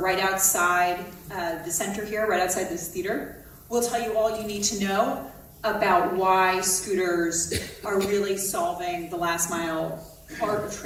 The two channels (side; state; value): both; identical; correlation 1.00